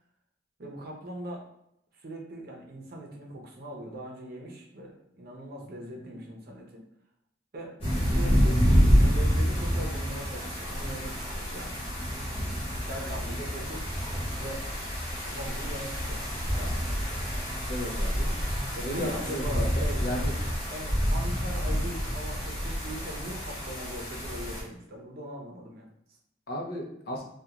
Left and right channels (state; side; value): normal; both; correlation 0.85